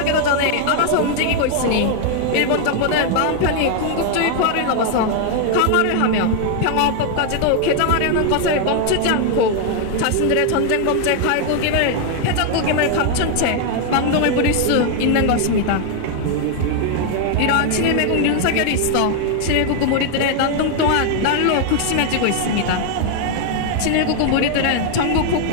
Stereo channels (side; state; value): both; different; correlation 0.00